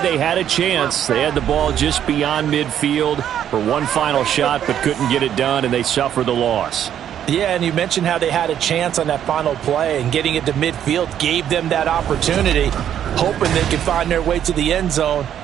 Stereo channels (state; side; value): quieter; left; 10.0 dB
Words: had a chance. They had the ball just beyond midfield for one final shot but couldn't get it done, and they suffered the loss. Yeah, and you mentioned how they had a chance on that final play, and getting it to midfield gave them that opportunity, hoping they could find their way to the end zone